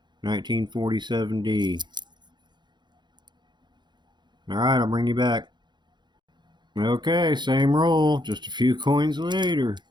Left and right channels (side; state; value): left; late; 0.21 ms